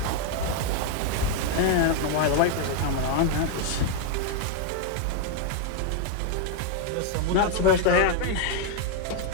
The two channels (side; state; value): both; different; correlation 0.00